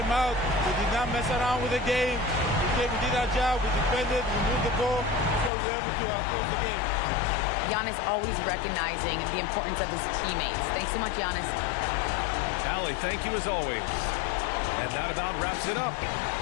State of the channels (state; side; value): drops out; right; at 5.5 s